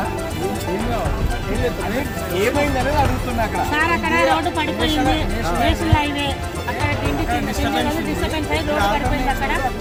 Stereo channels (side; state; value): both; identical; correlation 1.00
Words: ఏమైందనేది అడుగుతున్నా అక్కడ సార్. అక్కడ రోడ్డు పడిపోయింది, నేషనల్ హైవే అక్కడ డిస్టర్బెన్స్ అయ్యి రోడ్డు పడిపోయింది. అక్కడ